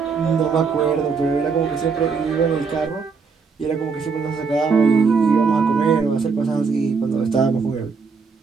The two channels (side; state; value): left; quieter; 5.1 dB